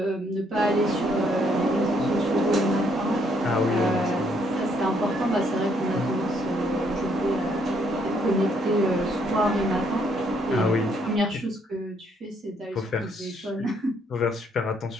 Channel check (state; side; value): normal; both; correlation 0.70